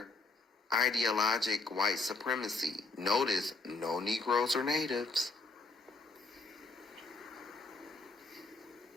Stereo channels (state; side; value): quieter; right; 3.7 dB